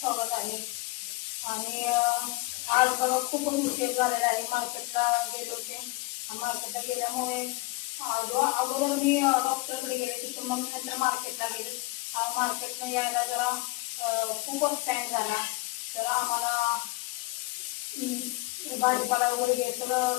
आहे. आणि आज बघा खूपच उशीर झालेला आहे. मार्केटला गेले होते. मार्केटला गेल्यामुळे अगोदर मी डॉक्टरकडे गेले, तिथून मग नंतर मार्केटला गेले. मार्केटला यायला जरा खूपच टाईम झाला. तर आम्हाला भाजीपाला वगैरे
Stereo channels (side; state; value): right; quieter; 22.8 dB